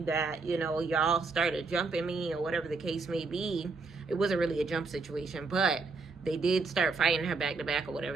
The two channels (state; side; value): quieter; left; 4.2 dB